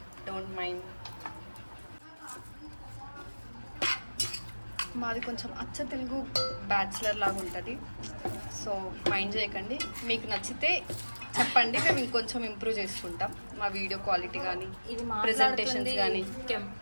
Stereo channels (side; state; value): both; inverted; correlation -1.00